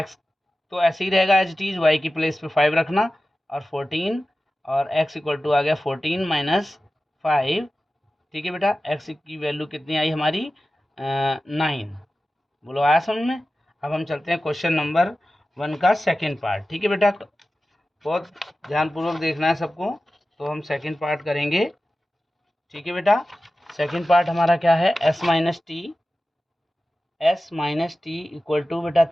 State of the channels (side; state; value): both; normal; correlation 0.95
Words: तो ऐसे ही रहेगा एज इट इज, y की प्लेस पे 5 रखना और 14 और x इक्वल टू आ गया 14 माइनस 5। ठीक है बेटा, x की वैल्यू कितनी आई हमारी 9। बोलो आया समझ में? अब हम चलते हैं क्वेश्चन नंबर 1 का सेकेंड पार्ट। ठीक है बेटा, बहुत ध्यानपूर्वक देखना है सबको। तो हम सेकंड पार्ट करेंगे। ठीक है बेटा, सेकंड पार्ट हमारा क्या है, s minus t equal to बेटा